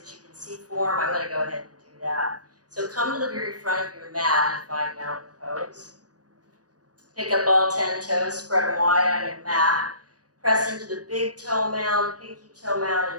you can see form, I'm going to go ahead and do that. So come to the very front of your mat and find mountain pose. Pick up all 10 toes, spread them wide on your mat. Press into the big toe mound, pinky toe mound,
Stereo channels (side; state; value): left; late; 0.68 ms